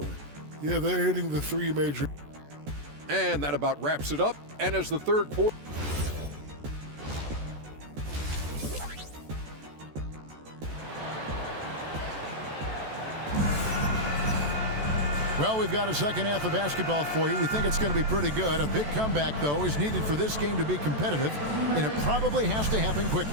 Yeah, they're hitting the 3 major. And that about wraps it up. And as the third quarter... Well, we've got a second half of basketball for you. We think it's going to be pretty good. A big comeback, though, is needed for this game to be competitive, and it probably has to happen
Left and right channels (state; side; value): late; left; 14 ms